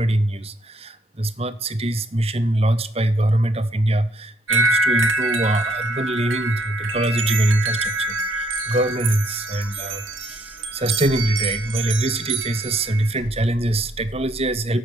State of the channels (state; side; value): normal; both; correlation 0.68